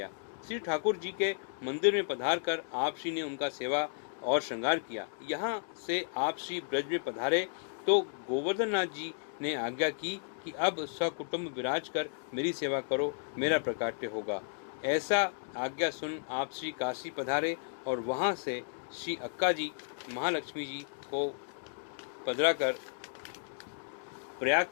श्री ठाकुर जी के मंदिर में पधार कर आप श्री ने उनका सेवा और श्रृंगार किया। यहाँ से आप श्री ब्रज में पधारे तो गोवर्धन नाथ जी ने आज्ञा की कि अब सकुटुंब विराज कर मेरी सेवा करो, मेरा प्रकाट्य होगा। ऐसा आज्ञा सुन आप श्री काशी पधारे और वहां से श्री अक्का जी महालक्ष्मी जी को पधरा कर प्रयाग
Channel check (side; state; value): right; silent; digital silence